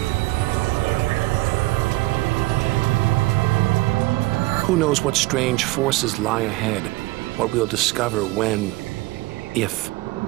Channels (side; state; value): left; quieter; 19.9 dB